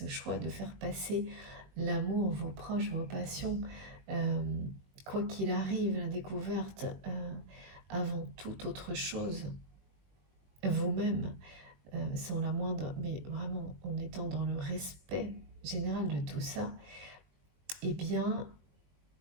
choix de faire passer l'amour, vos proches, vos passions, quoi qu'il arrive, la découverte avant toute autre chose, vous-même, sans la moindre, mais vraiment en étant dans le respect général de tout ça, eh bien,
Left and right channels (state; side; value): late; left; 21 ms